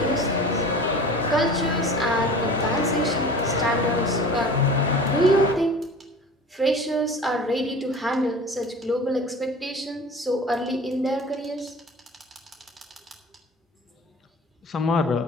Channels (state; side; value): normal; both; correlation 0.40